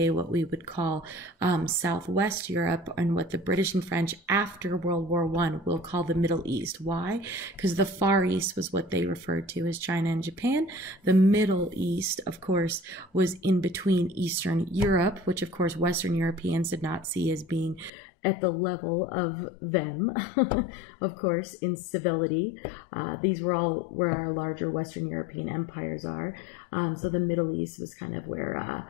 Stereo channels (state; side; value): drops out; right; at 17.9 s